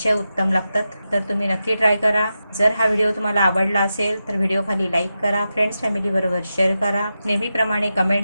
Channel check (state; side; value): inverted; both; correlation -0.90